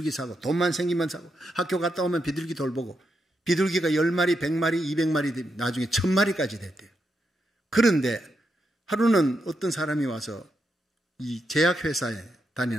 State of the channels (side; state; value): both; normal; correlation 0.83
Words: 사고 돈만 생기면 사고 학교 갔다 오면 비둘기 돌보고 비둘기가 10마리, 100마리, 200마리 나중에 1000마리까지 됐대요. 그런데 하루는 어떤 사람이 와서 이 제약회사에